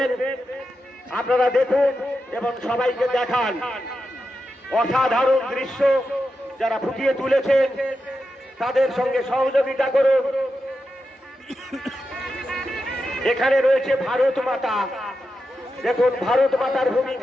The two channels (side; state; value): both; normal; correlation 0.89